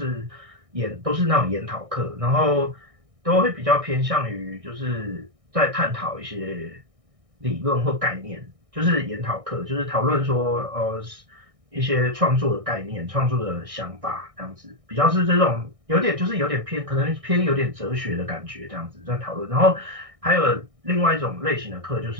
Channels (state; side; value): late; left; 1.6 ms